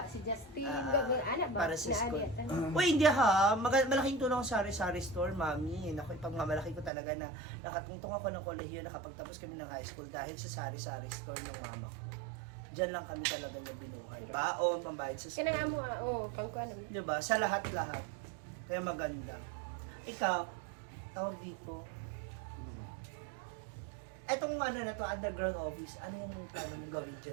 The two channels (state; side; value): drops out; left; at 6.9 s